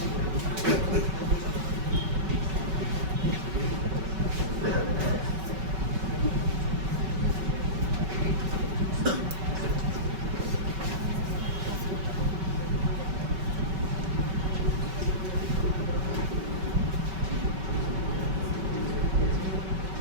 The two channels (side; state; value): left; late; 5.3 ms